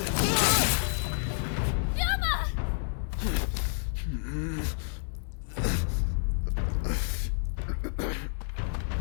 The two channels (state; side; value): silent; right; digital silence